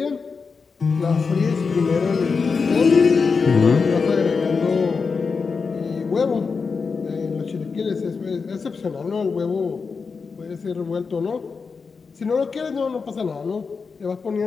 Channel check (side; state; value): right; quieter; 5.0 dB